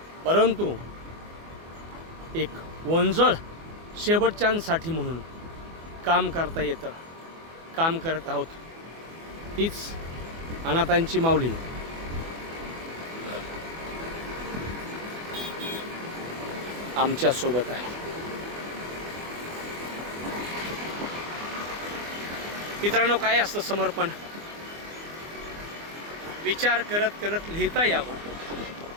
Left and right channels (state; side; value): late; left; 24 ms